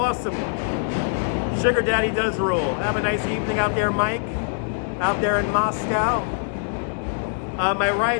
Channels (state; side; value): silent; right; digital silence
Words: Sugar Daddy does rule. Have a nice evening out there, Mike. Out there in Moscow. My